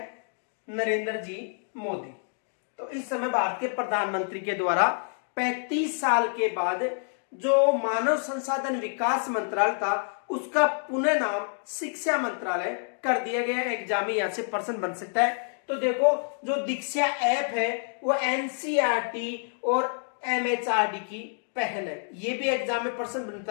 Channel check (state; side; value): silent; right; 59 dB below the other